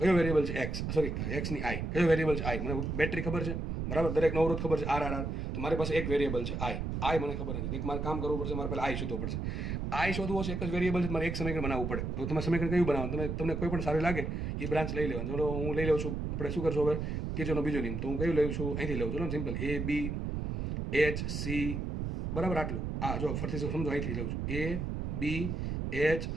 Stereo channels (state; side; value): noise; right; rumble, 2 dB below the sound